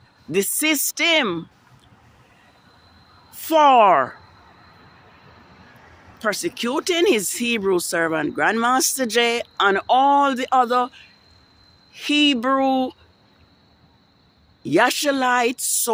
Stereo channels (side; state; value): both; identical; correlation 1.00